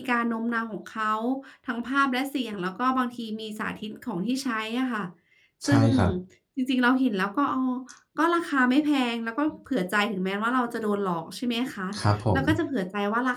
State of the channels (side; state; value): both; identical; correlation 1.00